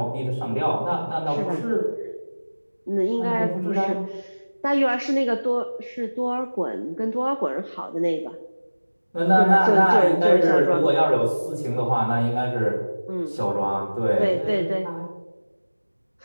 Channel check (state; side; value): inverted; both; correlation -1.00